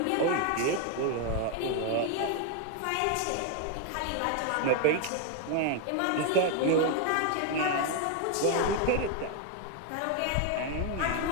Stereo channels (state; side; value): different; both; correlation 0.01